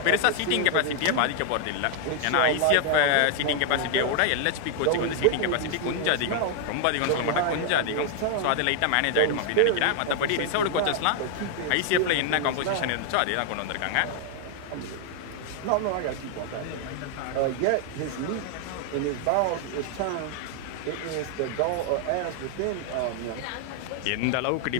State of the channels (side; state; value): both; different; correlation 0.00